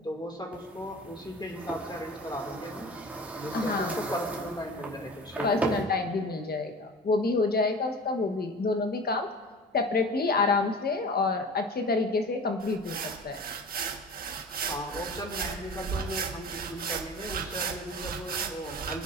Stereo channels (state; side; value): normal; both; correlation 0.38